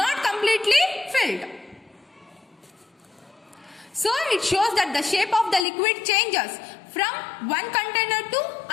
completely filled. So it shows that the shape of the liquid changes from one container to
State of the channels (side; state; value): right; drops out; at 5.7 s